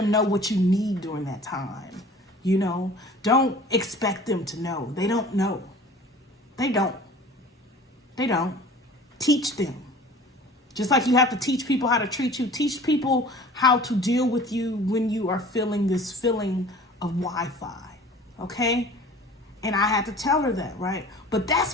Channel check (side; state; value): both; normal; correlation 0.45